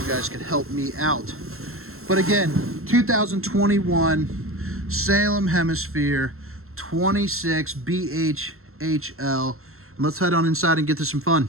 guys could help me out. But again, 2021 Salem Hemisphere 26 BHHL. Let's head on inside and get to some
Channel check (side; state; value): left; late; 0.62 ms